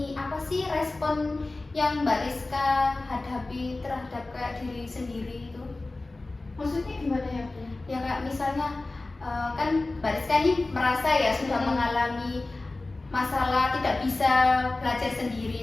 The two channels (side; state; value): right; quieter; 3.1 dB